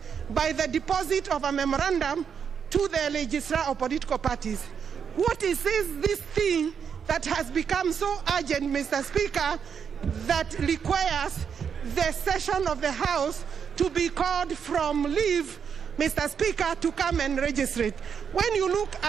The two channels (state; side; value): quieter; left; 7.1 dB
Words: by the deposit of a memorandum to the registrar of political parties. What is this thing that has become so urgent, Mr. Speaker, that requires the session of the House to be called from leave, Mr. Speaker, to come and register it? When you look